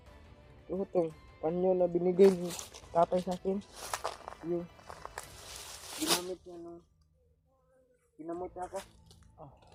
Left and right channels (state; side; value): identical; both; correlation 1.00